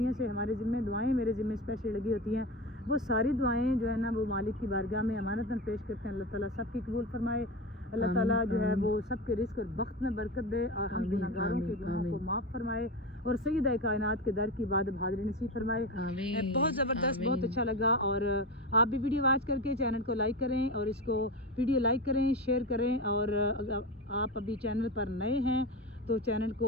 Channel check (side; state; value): both; normal; correlation 0.22